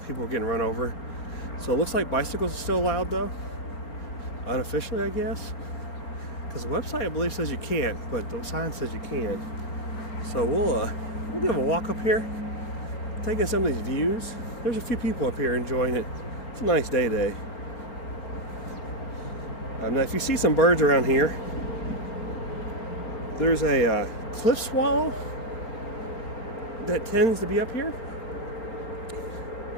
People were getting run over. So it looks like bicycles are still allowed though, unofficially I guess, because the website I believe says you can't, but the sign says you can. So we'll give a walk up here, taking some of these views. There's a few people up here enjoying it. It's a nice day today. Now if you see some birds around here, there's a cliff swallow that tends to be up here.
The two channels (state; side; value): late; right; 4.4 ms